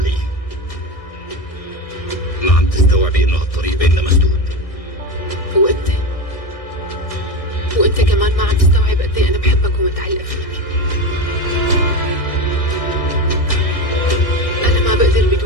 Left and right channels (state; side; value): late; right; 1.6 ms